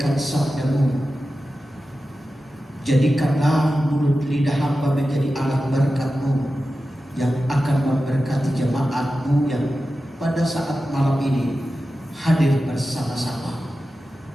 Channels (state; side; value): normal; both; correlation 0.93